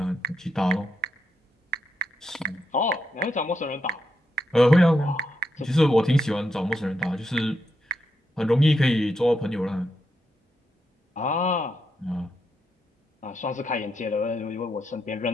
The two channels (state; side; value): normal; both; correlation 0.83